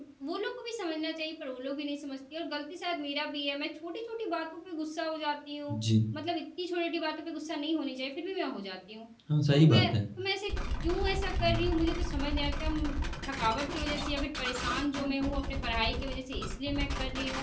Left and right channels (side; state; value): both; identical; correlation 1.00